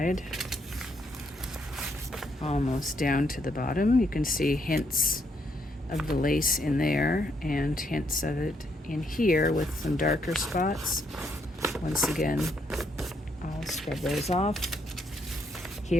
Almost down to the bottom. You can see hints of the lace in there and hints of it in here with some darker spots. Once again, I'll scrub those off.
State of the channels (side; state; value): both; normal; correlation 0.74